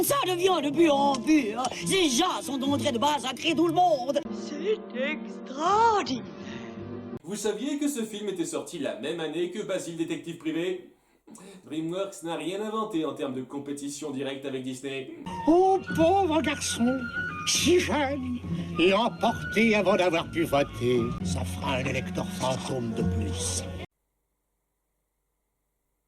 Ça devient de pur en pur. Ces gens sont entrés de massacrer tout le monde. C'est extraordinaire. Vous saviez que ce film était sorti la même année que Basile Détective Privé? DreamWorks n'a rien inventé en termes de compétition directe avec Disney. Oh, pauvre garçon, si jeune et emporté avant d'avoir pu voter. Ça fera un électeur fantôme de plus.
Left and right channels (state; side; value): identical; both; correlation 1.00